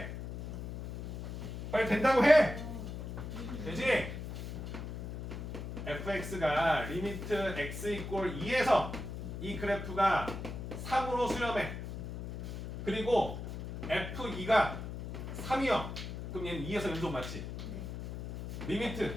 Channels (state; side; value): noise; left; hum, 7 dB below the sound